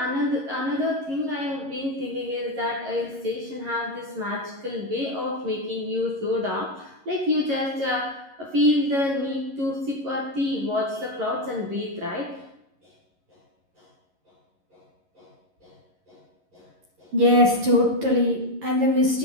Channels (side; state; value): left; late; 11 ms